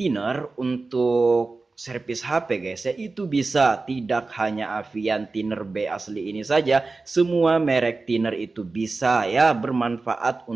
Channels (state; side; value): quieter; left; 3.7 dB